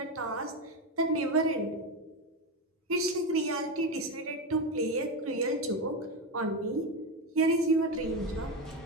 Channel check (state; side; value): normal; both; correlation 0.14